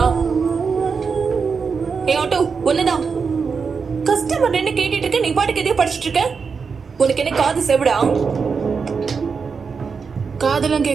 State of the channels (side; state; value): left; quieter; 5.4 dB